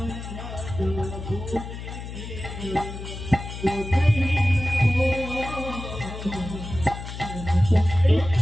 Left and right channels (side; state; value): left; noise; hum, 9 dB below the sound